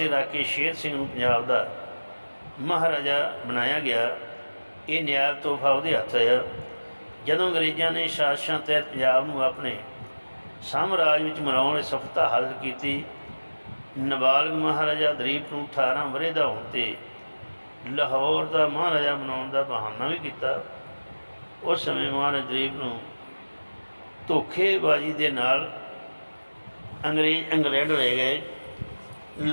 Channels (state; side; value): inverted; both; correlation -1.00